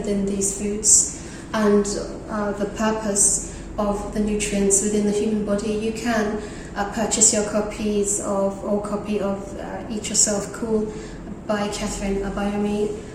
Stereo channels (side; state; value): both; identical; correlation 1.00